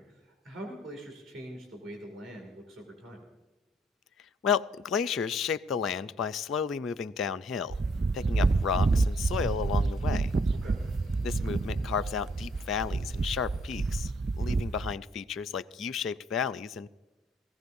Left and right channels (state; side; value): normal; both; correlation 0.65